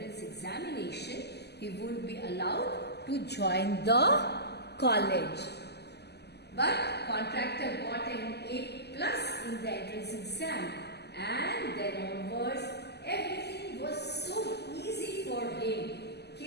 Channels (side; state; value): right; late; 0.49 ms